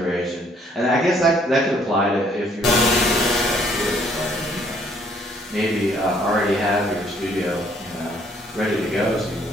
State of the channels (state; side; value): normal; both; correlation 0.64